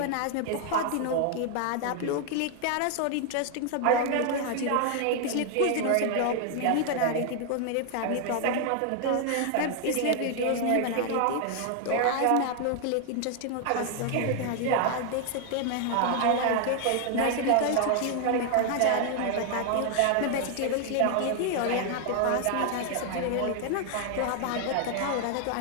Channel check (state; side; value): different; both; correlation 0.00